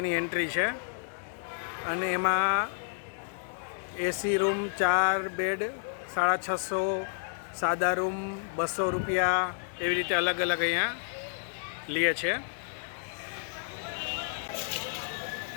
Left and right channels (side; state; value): right; silent; digital silence